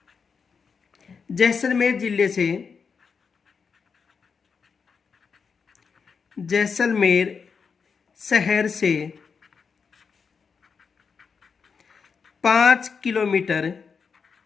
जैसलमेर जिले से जैसलमेर शहर से 5 किलोमीटर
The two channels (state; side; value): quieter; right; 5.7 dB